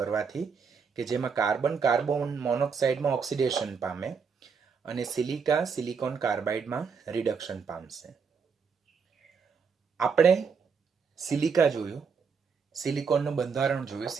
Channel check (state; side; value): quieter; left; 5.7 dB